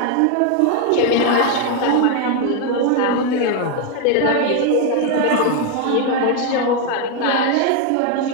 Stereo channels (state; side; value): different; both; correlation 0.01